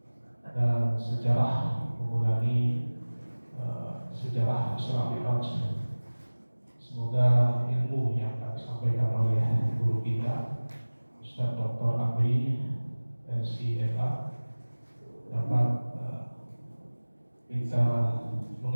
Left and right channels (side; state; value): both; inverted; correlation -1.00